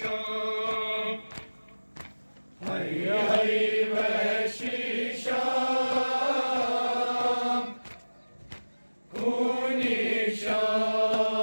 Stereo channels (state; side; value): inverted; both; correlation -1.00